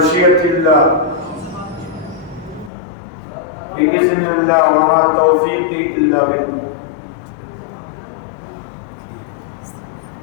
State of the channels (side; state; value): right; drops out; at 2.7 s